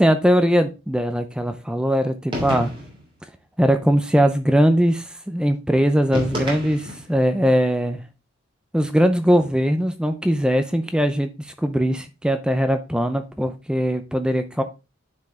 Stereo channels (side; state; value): both; normal; correlation 0.91